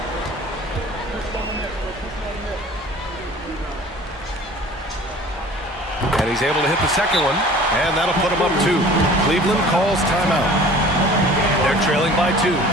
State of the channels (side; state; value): both; normal; correlation 0.46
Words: And he's able to hit the second one, and that'll put him up 2. Cleveland calls timeout. They're trailing by 2.